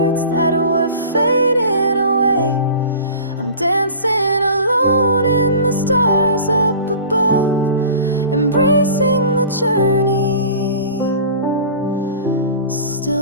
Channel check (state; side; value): inverted; both; correlation -0.39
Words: that were fading away. I'm dancing alone in the stars up above, embracing the journey,